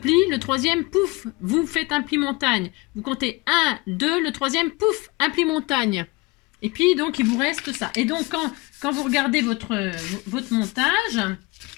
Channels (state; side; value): quieter; right; 23.7 dB